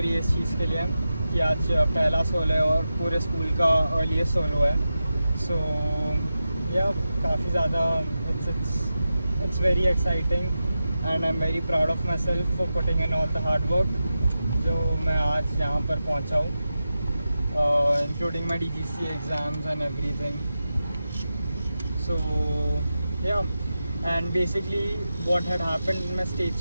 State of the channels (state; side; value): inverted; both; correlation -0.91